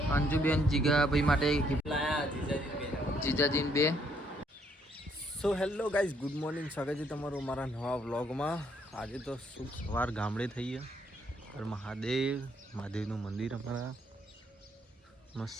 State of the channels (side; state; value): both; normal; correlation 0.69